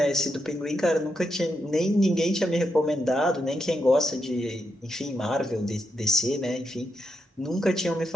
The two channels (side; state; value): both; normal; correlation 0.83